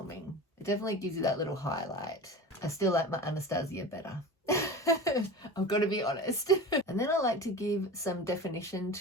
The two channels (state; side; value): normal; both; correlation 0.33